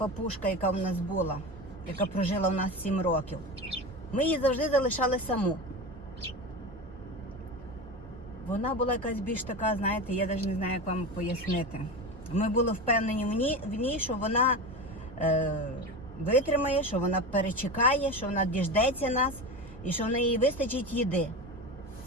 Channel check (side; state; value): both; normal; correlation 0.25